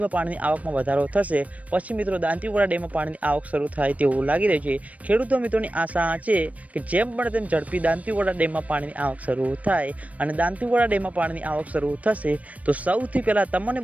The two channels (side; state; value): left; late; 0.068 ms